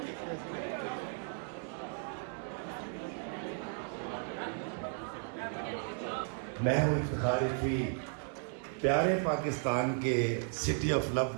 मैं हूँ इफ्तिखार इफ़ी, प्यारे पाकिस्तान के सिटी ऑफ लव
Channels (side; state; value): left; silent; 54 dB below the other